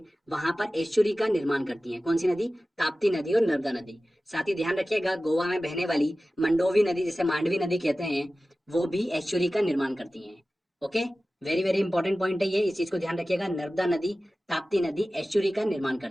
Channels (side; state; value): both; normal; correlation 0.96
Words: वहां पर एस्चुरी का निर्माण करती हैं। कौन सी नदी? ताप्ती नदी और नर्मदा नदी। साथ ही ध्यान रखिएगा गोवा में बहने वाली मंडोवी नदी, जिसे मांडवी नदी कहते हैं, वो भी एस्चुरी का निर्माण करती हैं। Okay, very very important point है ये, इस चीज को ध्यान रखिएगा। नर्मदा नदी, ताप्ती नदी एस्चुरी का निर्माण